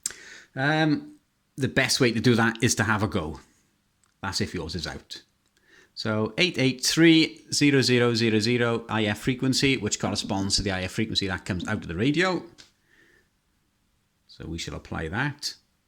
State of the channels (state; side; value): identical; both; correlation 1.00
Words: The best way to do that is to have a go. That's if yours is out. So 883.0000 IF frequency, which corresponds to the IF frequency that comes out of the radio. So we shall apply that.